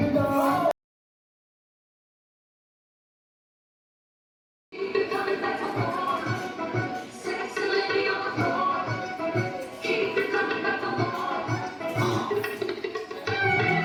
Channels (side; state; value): both; identical; correlation 1.00